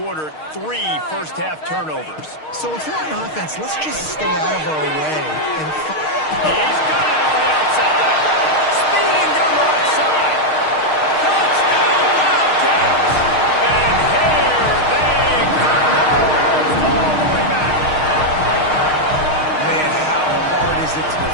3 first-half turnovers. So if we're on offense, let's just stay out of our way. And he's got it on the outside. Speeding down the right side. Touchdown, Wildcats. And here they come. Almost all the way back. Man, how hard is it to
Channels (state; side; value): late; right; 6.5 ms